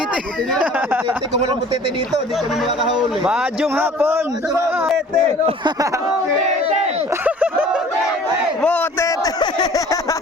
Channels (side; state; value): both; normal; correlation 0.49